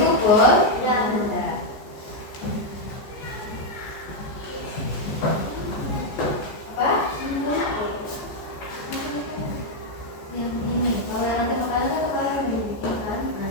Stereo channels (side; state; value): right; late; 14 ms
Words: Bol? Sudah. Sudah. Apa? Yang ini. Kalau yang nanti makanan kan kepala yang dibikin kan? Nah,